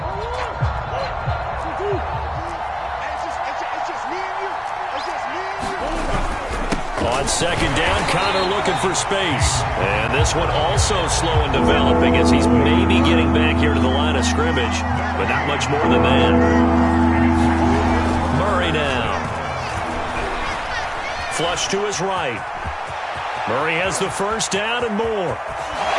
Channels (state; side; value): identical; both; correlation 1.00